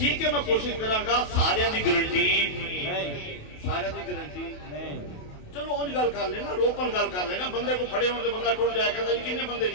ہے میں کوشش کراں گا سارے دی گارنٹی نہیں سارے دی گارنٹی نہیں. چلو اونج گل کر لینا روپن گل کر لینا بندے کو پھڑے ہونے بندہ ٹر جائے کہتا جی کنے بندے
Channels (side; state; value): right; late; 28 ms